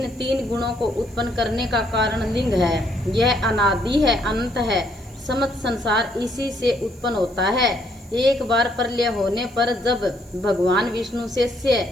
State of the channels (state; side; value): noise; right; hiss, 27 dB below the sound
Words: 3 गुणों को उत्पन्न करने का कारण लिंग है। यह अनादि है, अनंत है। समस्त संसार इसी से उत्पन्न होता है। एक बार प्रलय होने पर जब भगवान विष्णु से